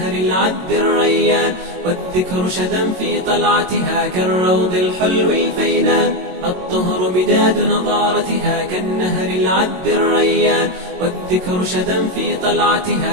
العذب الريان، والذكر شذا في طلعتها كالروض الحلو الفينان. الطهر مداد نضارتها كالنهر العذب الريان، والذكر شذا في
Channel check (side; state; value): left; late; 22 ms